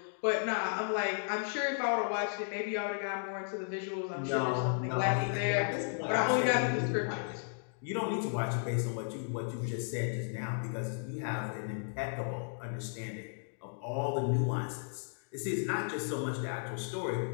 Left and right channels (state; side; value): silent; right; digital silence